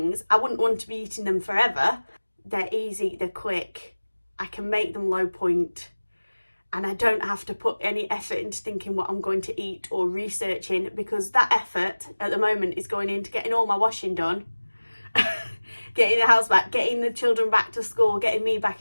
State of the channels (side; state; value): both; inverted; correlation -1.00